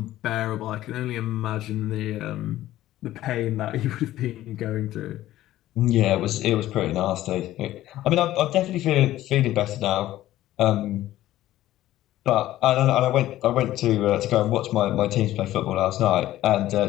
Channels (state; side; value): quieter; right; 14.5 dB